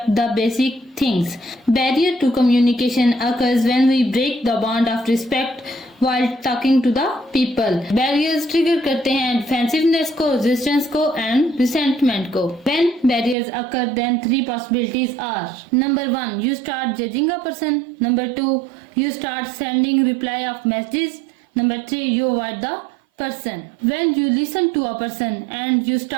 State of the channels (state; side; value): drops out; left; at 13.4 s